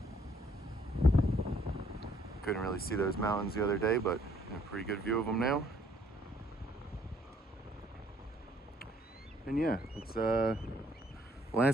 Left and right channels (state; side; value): normal; both; correlation 0.64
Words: Couldn't really see those mountains the other day, but a pretty good view of them now. And yeah, it's